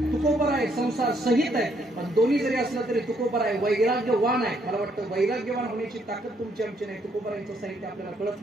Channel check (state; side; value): normal; both; correlation 0.71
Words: तुकोबर आहे संसार सहित आहे. पण दोन्ही जरी असलं तरी तुकोबर आहे वैराग्यवान आहे. मला वाटतं वैराग्यवान होण्याची ताकद तुमची आमची नाही. तुकोबरांचं साहित्य आपल्याला कळत